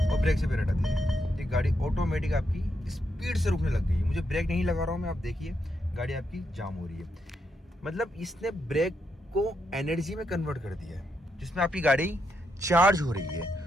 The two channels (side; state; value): both; normal; correlation 0.81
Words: ब्रेक से पैर हटा दिया, ये गाड़ी ऑटोमेटिक आपकी स्पीड से रुकने लग गई है। मुझे ब्रेक नहीं लगा रहा हूँ मैं, आप देखिए गाड़ी आपकी जाम हो रही है। मतलब इसने ब्रेक को एनर्जी में कन्वर्ट कर दिया है जिसमें आपकी गाड़ी चार्ज हो रही है।